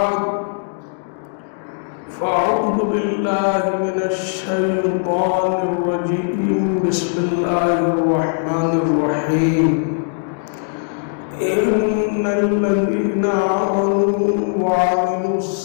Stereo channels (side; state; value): right; silent; digital silence